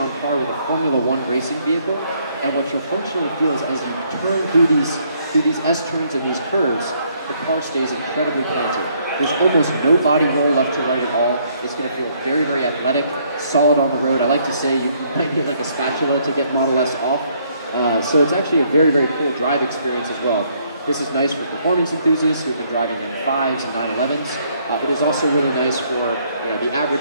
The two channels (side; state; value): both; inverted; correlation -0.68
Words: par with a Formula 1 racing vehicle, and what you'll functionally feel is as you turn through these S-turns and these curves, the car stays incredibly planted. There's almost no body roll left to right at all. It's going to feel very, very athletic, solid on the road. I like to say you might need like a spatula to get Model S off. So it's actually a very, very cool drive experience as well. This is nice for performance enthusiasts who've been driving M5s and 911s. It is also really nice for the